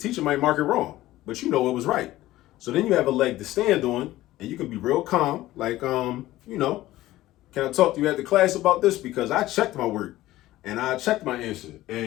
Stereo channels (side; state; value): right; quieter; 16.0 dB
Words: might mark it wrong, but you know it was right. So then you have a leg to stand on, and you can be real calm, like, you know, can I talk to you at the class about this? Because I checked my work and I checked my answer